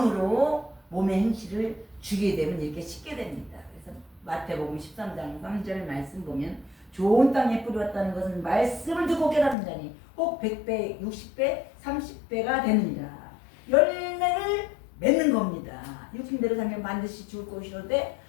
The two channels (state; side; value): drops out; right; at 9.6 s